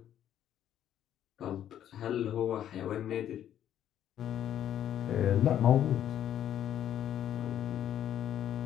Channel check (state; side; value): quieter; right; 10.7 dB